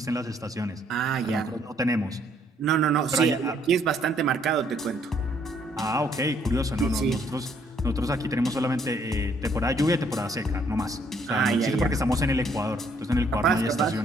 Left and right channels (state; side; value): normal; both; correlation 0.67